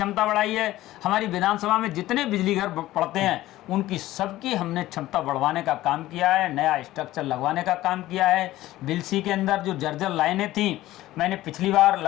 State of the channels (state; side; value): quieter; right; 15.8 dB